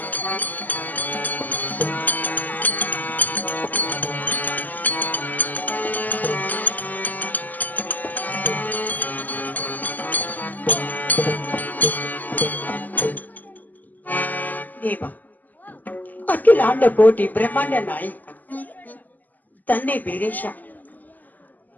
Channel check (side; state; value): right; late; 0.083 ms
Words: ದೇವ ಅಖಿಲಾಂಡ ಕೋಟಿ ಬ್ರಹ್ಮಾಂಡ ನಾಯಕ ತಂದೆ ವೀರೇಶ